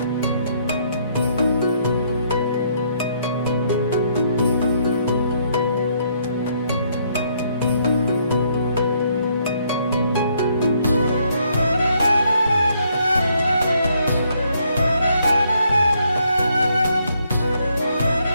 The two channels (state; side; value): inverted; both; correlation -0.71